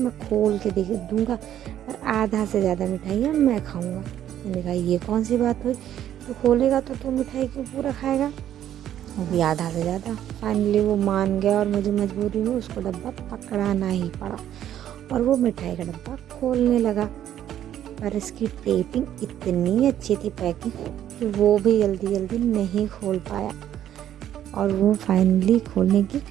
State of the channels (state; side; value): quieter; left; 11.1 dB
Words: खोल के देख दूँगा, पर आधा से ज़्यादा मिठाइयाँ मैं खाऊँगा। मैंने कहा ये कौन सी बात हुई, तो खोलेगा तो तू मिठाई क्यों पूरा खाएगा, वो भी आधा से ज़्यादा। फाइनली वो मान गया और मुझे मजबूरी में उसको डब्बा पकड़ाना ही पड़ा और वो मिठाई का डब्बा खोलने लगा। पर इसकी टेपिंग इतनी अच्छी थी, पैकिंग, कि वो भी जल्दी जल्दी नहीं खोल पाया। और वो फाइनली खोलने की